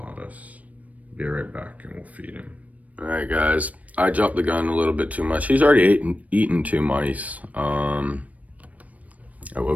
Be right back and we'll feed him. All right, guys. I jumped the gun a little bit too much. He's already eaten 2 mice. I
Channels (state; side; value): late; left; 0.070 ms